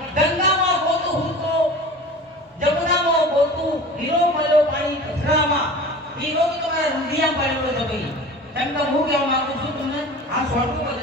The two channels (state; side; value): normal; both; correlation 0.37